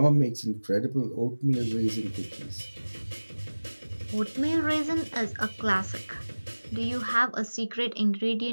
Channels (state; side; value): inverted; both; correlation -1.00